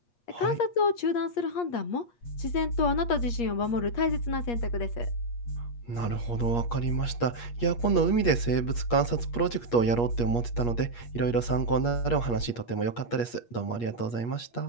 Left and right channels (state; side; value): late; right; 8.4 ms